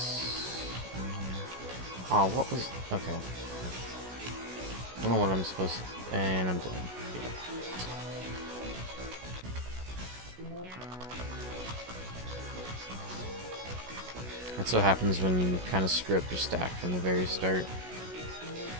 Oh, what was... Okay. I don't know what I'm supposed to... And I'm done. Yeah. That's what happens when you kind of screw up your stack from the very start.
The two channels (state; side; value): late; left; 16 ms